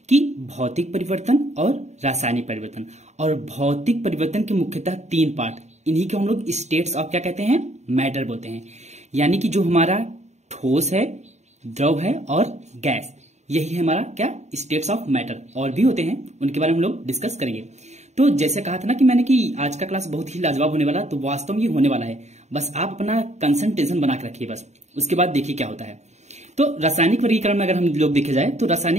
कि भौतिक परिवर्तन और रासायनिक परिवर्तन। और भौतिक परिवर्तन के मुख्यतः तीन पार्ट, इन्हीं को हम लोग स्टेट्स ऑफ क्या कहते हैं, मैटर बोलते हैं। यानी कि जो हमारा ठोस है, द्रव है और गैस, यही है हमारा क्या, स्टेट्स ऑफ मैटर। और भी होते हैं, उनके बारे में हम लोग डिस्कस करेंगे। तो जैसे कहा था ना कि मैंने कि आज का क्लास बहुत ही लाजवाब होने वाला, तो वास्तव में ये होने वाला है। बस आप अपना कंसंट्रेशन बना के रखिए, बस उसके बाद देखिए क्या होता है। तो रासायनिक वर्गीकरण में अगर हम लोग देखे जाए तो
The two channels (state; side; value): late; left; 0.33 ms